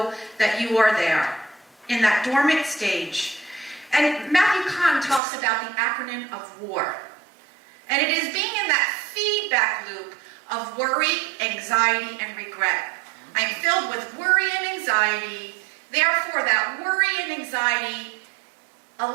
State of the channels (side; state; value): left; drops out; at 5.2 s